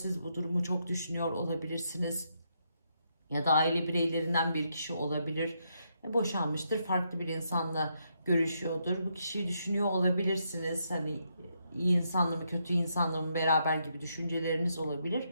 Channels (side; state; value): both; inverted; correlation -0.78